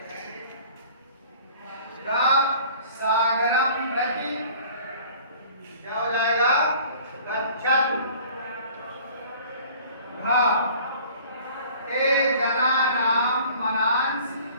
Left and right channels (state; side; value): inverted; both; correlation -0.49